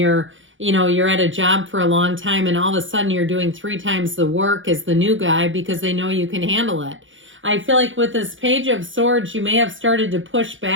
you're at a job for a long time and all of a sudden you're doing 3 times the work as the new guy because they know you can handle it. I feel like with this Page of Swords, you may have started to push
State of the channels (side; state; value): left; late; 0.56 ms